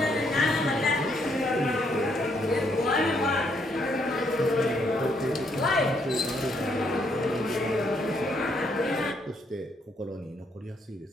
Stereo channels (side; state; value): both; normal; correlation 0.72